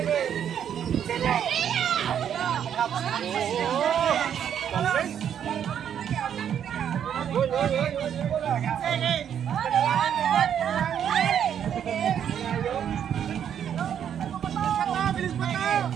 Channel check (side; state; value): left; quieter; 9.0 dB